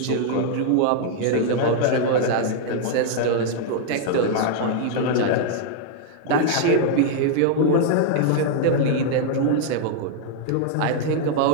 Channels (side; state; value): both; different; correlation -0.01